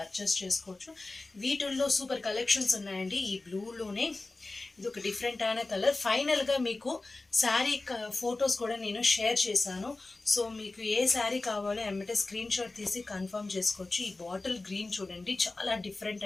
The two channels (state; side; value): quieter; right; 3.3 dB